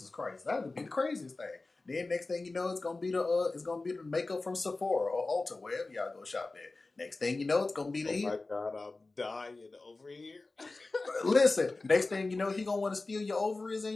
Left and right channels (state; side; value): quieter; right; 3.4 dB